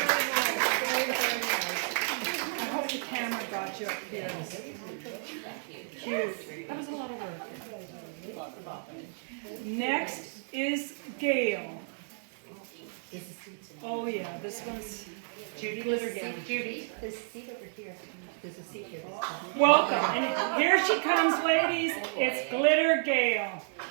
Very nice. I hope the camera got you up here. Cute. That was a lot of work. Next is Gail. Oh yeah, this one's Judy Glitter Gail. Judy. There's a seat over here. There's a seat here. Welcome. And here she comes, ladies. It's Glitter Gail.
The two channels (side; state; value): left; silent; digital silence